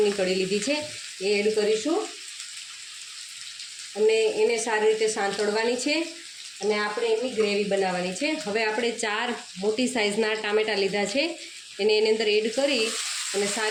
કળી લીધી છે, એ એડ કરીશું અને એને સારી રીતે સાંતળવાની છે અને આપણે એની ગ્રેવી બનાવવાની છે. હવે આપણે 4 મોટી સાઇઝના ટામેટાં લીધા છે, એને એની અંદર એડ કરી અને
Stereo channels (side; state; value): both; identical; correlation 1.00